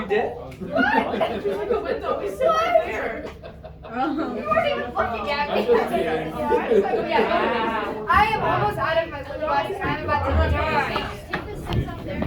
did? There's like a window. We still have there. You weren't even looking at me. I'm just kidding. Yeah. I am almost out of my lip gloss and I'm about to take the steps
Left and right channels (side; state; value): both; identical; correlation 1.00